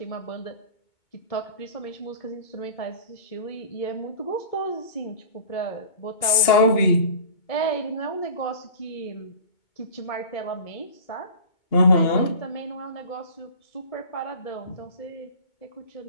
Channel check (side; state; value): right; late; 2.2 ms